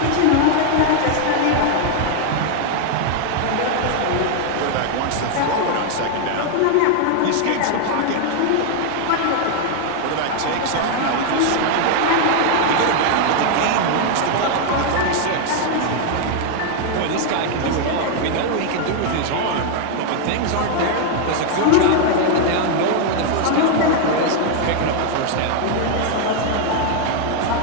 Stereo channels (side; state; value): both; different; correlation 0.00